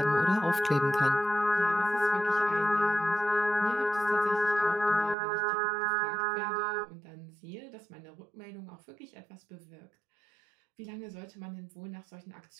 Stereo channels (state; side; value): drops out; left; at 5.2 s